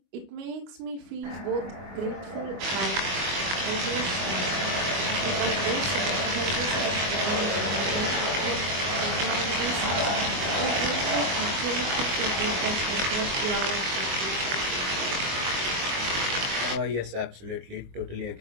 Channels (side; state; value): left; late; 22 ms